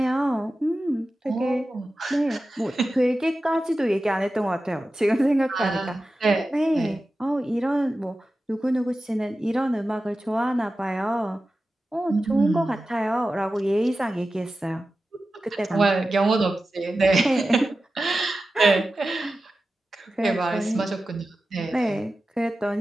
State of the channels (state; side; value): normal; both; correlation 0.94